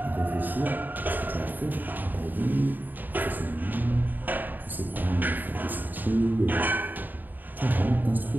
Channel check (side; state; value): left; late; 0.088 ms